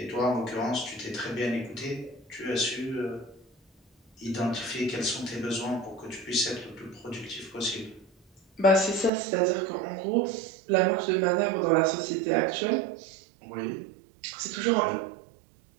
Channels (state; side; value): drops out; left; at 9.1 s